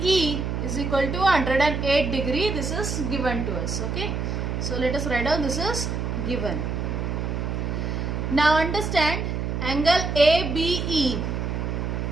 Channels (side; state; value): right; noise; hum, 2 dB below the sound